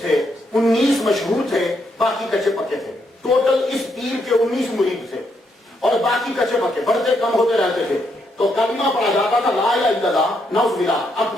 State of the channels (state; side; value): normal; both; correlation 0.77